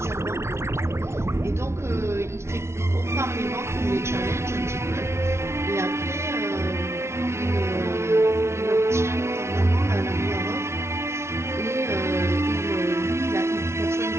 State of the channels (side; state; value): left; late; 0.13 ms